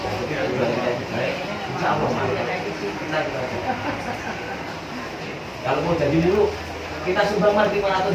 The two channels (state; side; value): identical; both; correlation 1.00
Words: insya Allah kita kalau mau jadi dulu kita sumbang mas